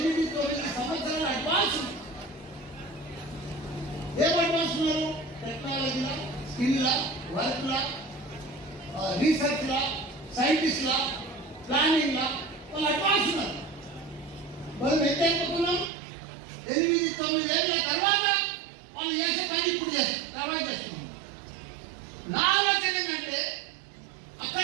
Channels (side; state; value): left; drops out; at 15.9 s